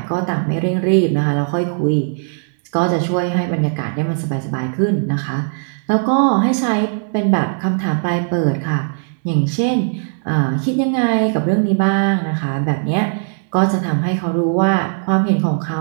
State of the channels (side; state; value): left; silent; 67 dB below the other